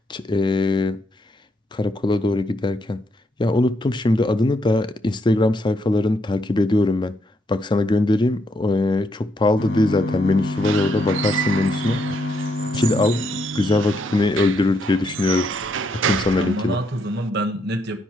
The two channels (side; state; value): both; normal; correlation 0.76